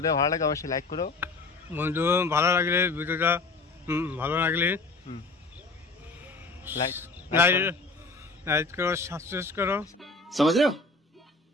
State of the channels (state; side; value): quieter; right; 3.6 dB